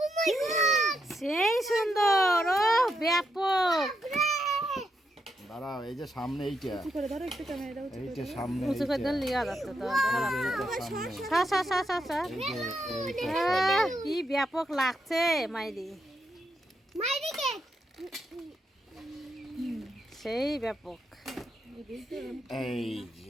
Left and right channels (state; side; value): normal; both; correlation 0.81